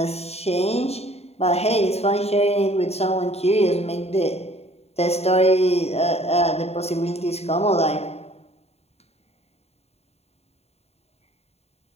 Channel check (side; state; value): right; late; 0.30 ms